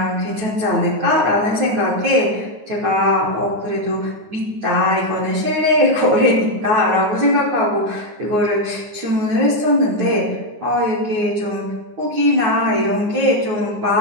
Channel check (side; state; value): left; late; 9.6 ms